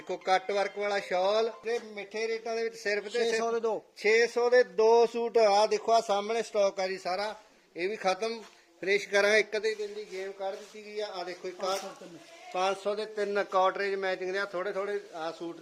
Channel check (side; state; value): both; identical; correlation 1.00